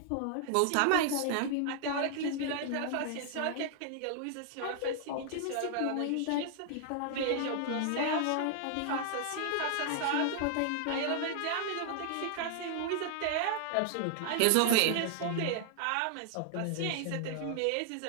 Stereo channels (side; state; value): both; different; correlation 0.00